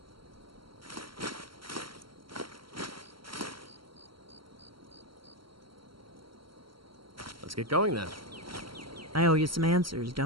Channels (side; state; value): left; late; 0.73 ms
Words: Let's get going then. I owe you some answers,